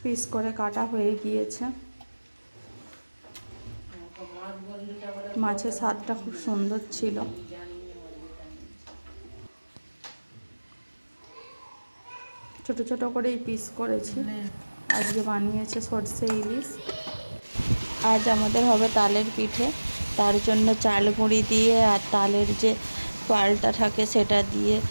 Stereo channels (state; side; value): inverted; both; correlation -1.00